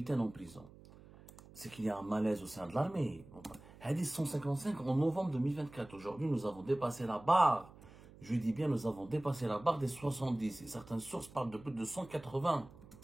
en prison? C'est qu'il y a un malaise au sein de l'armée. Hadith 155 en novembre 2024. Aujourd'hui, nous avons dépassé la barre Je dis bien, nous avons dépassé la barre des 70. Et certaines sources parlent de plus de 180.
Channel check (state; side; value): noise; right; hum, 20 dB below the sound